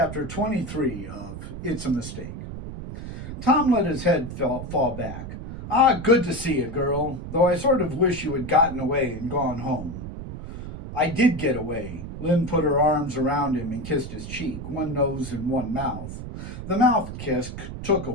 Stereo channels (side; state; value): right; noise; rumble, 9 dB below the sound